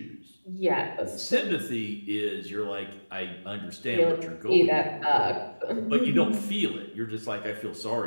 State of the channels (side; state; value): both; inverted; correlation -1.00